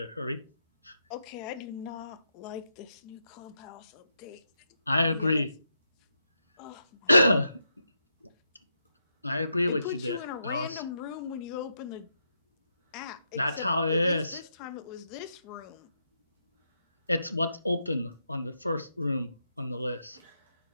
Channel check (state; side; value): inverted; both; correlation -0.82